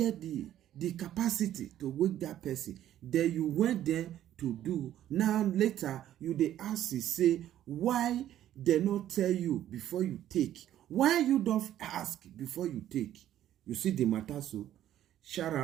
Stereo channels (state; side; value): quieter; left; 11.9 dB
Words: the capacity to wake that person. Then you went there to do. Now later you they ask you say why they not tell you before you take. Why you don't ask before you take? You see the matter. So shout